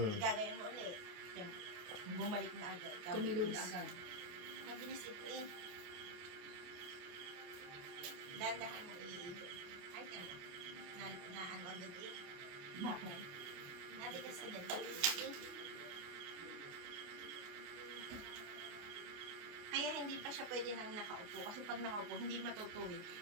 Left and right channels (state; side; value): late; left; 28 ms